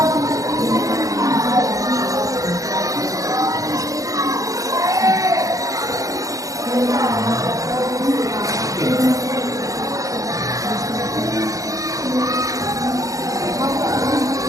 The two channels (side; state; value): left; late; 0.16 ms